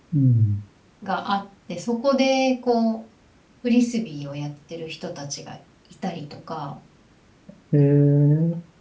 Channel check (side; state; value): both; identical; correlation 1.00